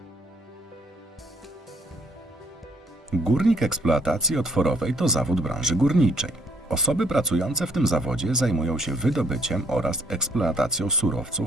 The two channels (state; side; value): normal; both; correlation 0.65